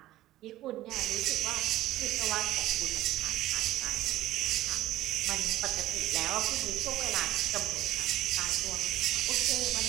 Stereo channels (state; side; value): quieter; left; 15.0 dB